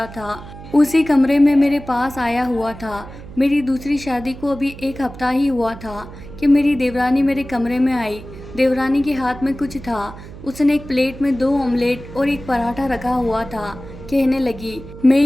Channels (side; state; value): right; noise; hum, 15 dB below the sound